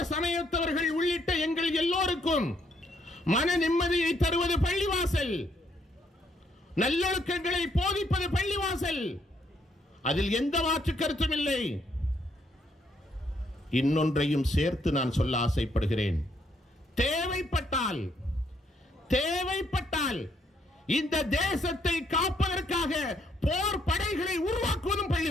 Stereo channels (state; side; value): normal; both; correlation 0.72